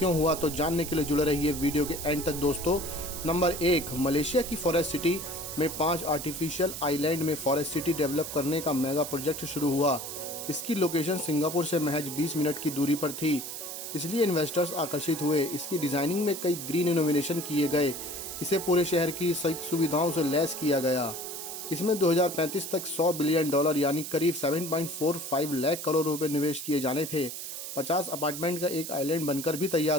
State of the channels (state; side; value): noise; right; hiss, 7 dB below the sound